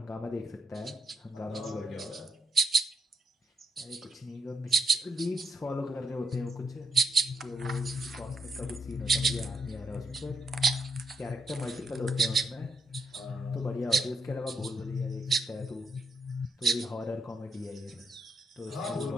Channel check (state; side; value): normal; both; correlation 0.80